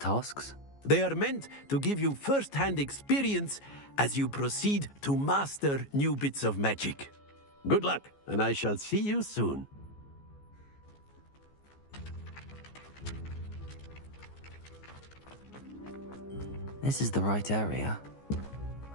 They are meant to give you first-hand experience as you proceed to master new bits of magic. Good luck, and I shall see you soon. This is the right area.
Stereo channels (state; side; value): late; right; 14 ms